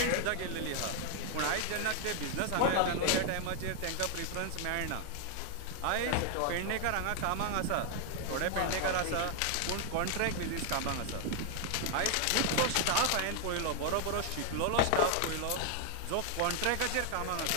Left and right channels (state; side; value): different; both; correlation 0.00